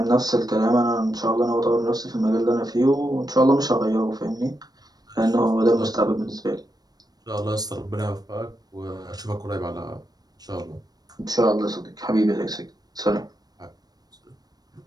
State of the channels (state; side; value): late; left; 0.19 ms